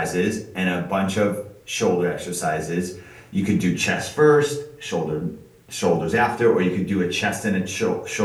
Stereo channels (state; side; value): identical; both; correlation 1.00